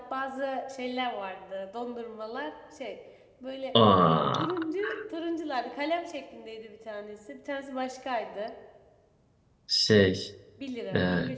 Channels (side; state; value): both; identical; correlation 1.00